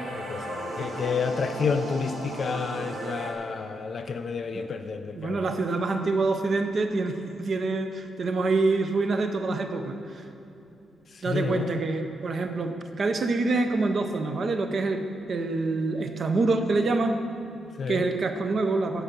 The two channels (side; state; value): both; normal; correlation 0.82